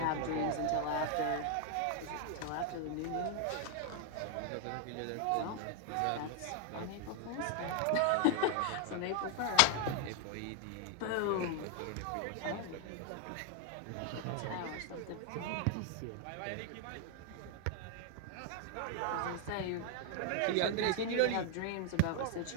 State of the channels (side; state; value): both; different; correlation 0.00